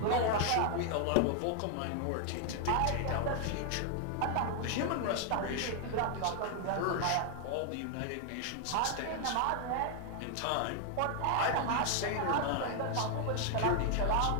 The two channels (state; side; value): different; both; correlation 0.00